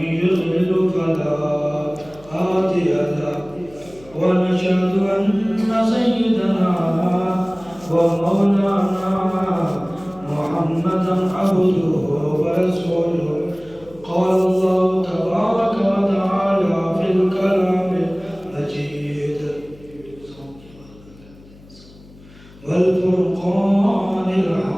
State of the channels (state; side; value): noise; left; hum, 23 dB below the sound